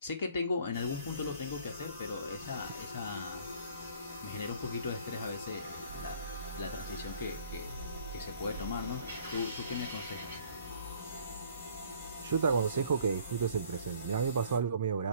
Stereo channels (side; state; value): both; inverted; correlation -0.56